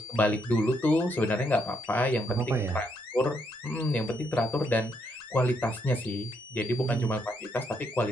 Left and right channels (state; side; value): normal; both; correlation 0.75